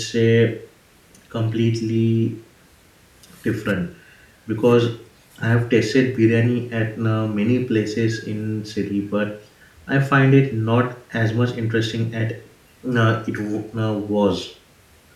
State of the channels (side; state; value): both; identical; correlation 1.00